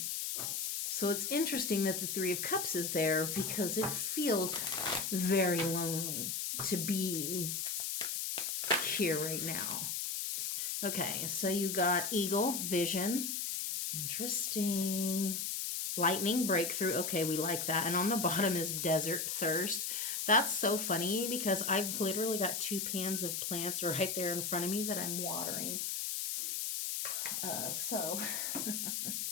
So it's interesting that the Three of Cups is there because it feels very lonely to be here right now. Okay, so you got Eagle, Vision. Interesting. Lightning, Breakthrough. Okay, we like that. And on the bottom is Desert, Thirst. That's so funny because I've literally got 2 pans of plants right there in front of me that I'm watering.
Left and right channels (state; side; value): noise; left; hiss, 1 dB below the sound